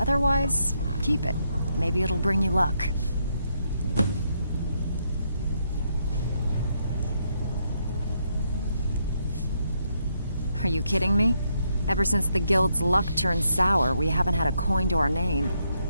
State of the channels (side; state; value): both; inverted; correlation -0.77